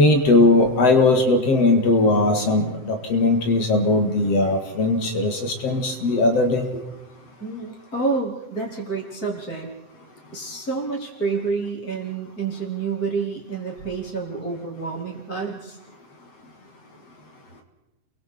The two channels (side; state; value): right; late; 7.8 ms